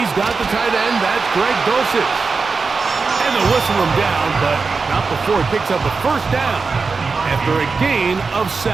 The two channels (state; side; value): quieter; left; 4.6 dB